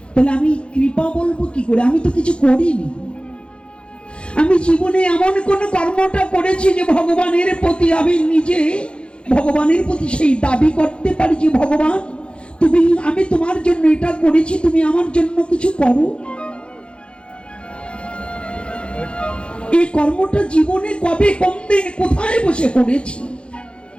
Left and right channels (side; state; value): right; late; 0.057 ms